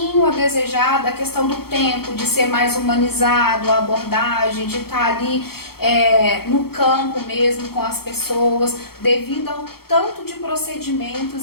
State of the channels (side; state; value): right; late; 0.95 ms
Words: a desejar da questão do tempo, de ser mais humanizado, a abordagem, de estar ali no campo mesmo com as pessoas, devido ao tanto de